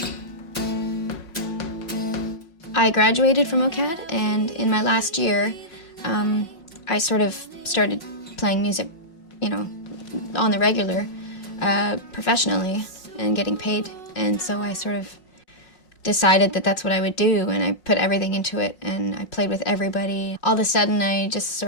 I graduated from OCAD, and in my last year, I sort of started playing music, you know, on the regular, professionally, and getting paid. And so I sort of decided that that's what I would do, and I put everything into it, and I played with everybody. All of a sudden, I just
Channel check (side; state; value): right; late; 5.5 ms